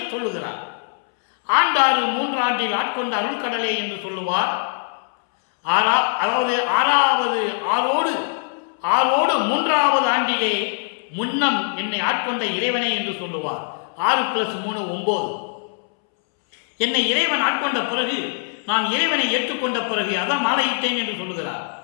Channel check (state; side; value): silent; right; 64 dB below the other